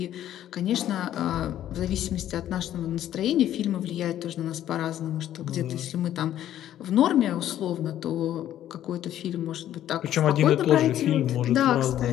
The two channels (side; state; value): right; quieter; 11.8 dB